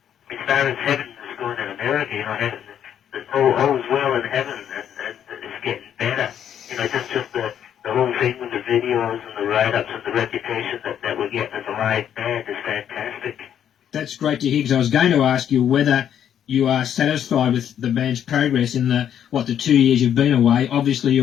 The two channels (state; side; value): quieter; right; 9.5 dB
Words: as far as heaven is going in America, you know, heaven, all is well in heaven, and it's getting better. You know, just the whole thing with the videos and the write-ups and the reputation that we're getting as a live band is fantastic. That's great to hear, because I was going to ask you whether you are satisfied with the band's progress in the 2 years you've been away. Obviously